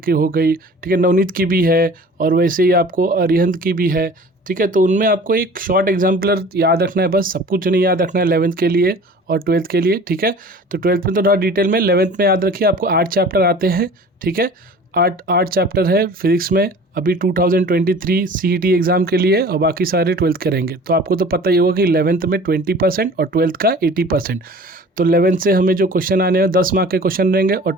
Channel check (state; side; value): normal; both; correlation 0.44